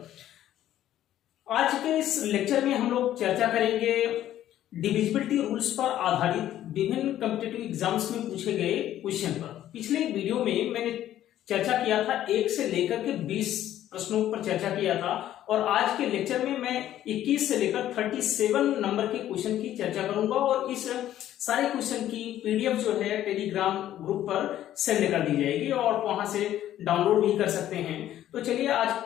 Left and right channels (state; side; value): quieter; right; 12.3 dB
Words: आज के इस लेक्चर में हम लोग चर्चा करेंगे डिविजिबिलिटी रूल्स पर आधारित विभिन्न कॉम्पिटिटिव एग्जाम्स में पूछे गए क्वेश्चन पर। पिछले वीडियो में मैंने चर्चा किया था 1 से लेकर के 20 प्रश्नों पर चर्चा किया था और आज के लेक्चर में मैं 21 से लेकर 37 नंबर के क्वेश्चन की चर्चा करूंगा और इस सारे क्वेश्चन की पीडीएफ जो है टेलीग्राम ग्रुप पर सेंड कर दी जाएगी और वहां से डाउनलोड भी कर सकते हैं। तो चलिए आज